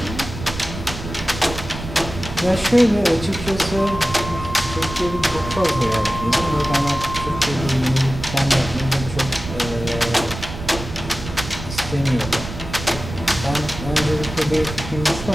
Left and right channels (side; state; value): right; noise; rumble, 10 dB below the sound